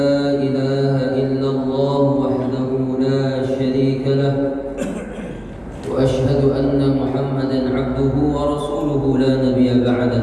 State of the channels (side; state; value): both; identical; correlation 1.00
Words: ilaha illallah wahdahu la sharika lah wa ashhadu anna Muhammadan abduhu wa rasuluhu la nabiyya